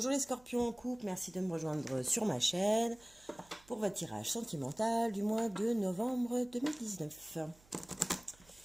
les scorpions en couple, merci de me rejoindre sur ma chaîne pour votre tirage sentimental du mois de novembre 2019.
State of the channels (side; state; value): right; noise; hum, 27 dB below the sound